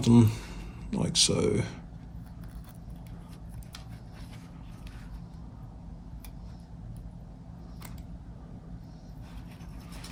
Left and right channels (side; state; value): both; identical; correlation 1.00